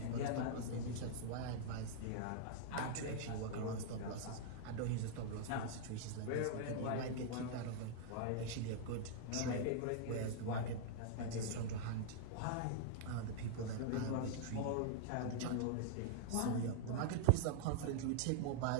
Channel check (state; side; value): different; both; correlation -0.01